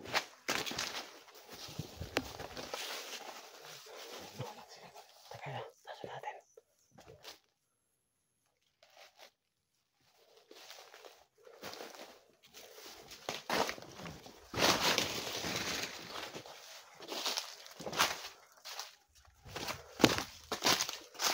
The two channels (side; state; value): both; identical; correlation 1.00